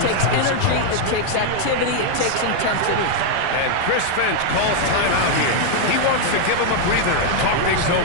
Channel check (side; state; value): both; different; correlation 0.00